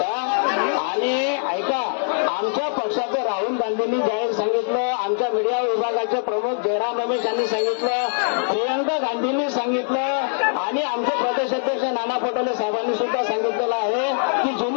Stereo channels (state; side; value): silent; right; digital silence